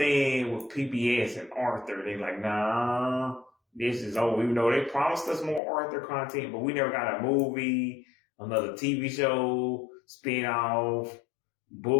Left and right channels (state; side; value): drops out; right; at 5.6 s